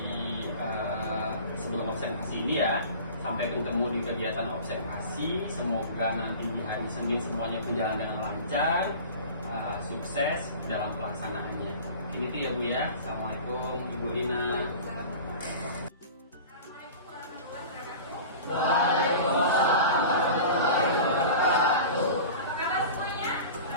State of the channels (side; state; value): both; inverted; correlation -0.37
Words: sebelum observasi ini ya. Sampai bertemu di kegiatan observasi. Semoga nanti di hari Senin semuanya berjalan dengan lancar, sukses dalam pelaksanaannya. Ini ya Bu ya. Assalamualaikum Ibu Lina. Waalaikumsalam warahmatullahi wabarakatuh. Apa kabar semuanya?